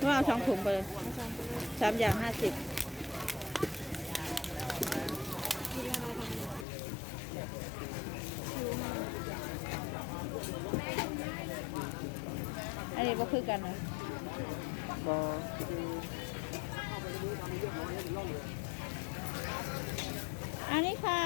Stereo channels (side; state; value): right; drops out; at 6.7 s